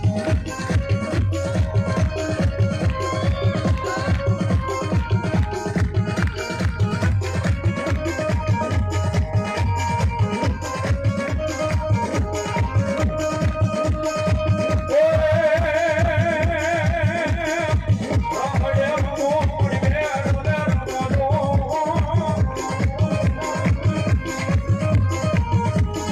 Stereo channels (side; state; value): both; identical; correlation 1.00